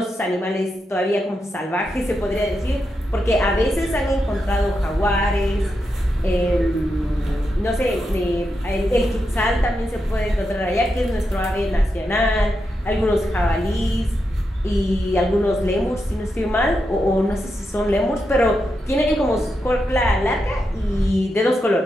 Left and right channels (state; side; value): normal; both; correlation 0.86